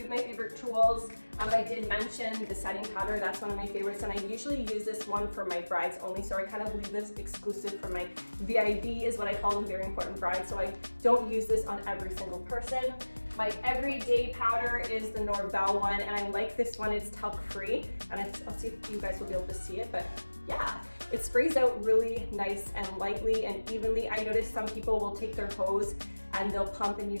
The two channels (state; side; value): inverted; both; correlation -1.00